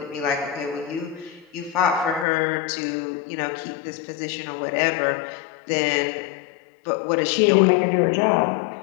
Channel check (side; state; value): right; drops out; at 2.2 s